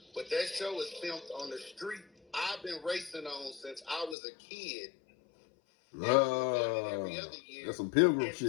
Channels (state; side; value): drops out; right; at 4.2 s